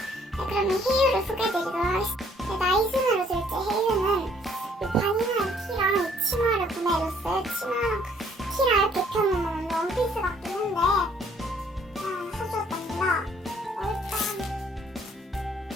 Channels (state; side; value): normal; both; correlation 0.63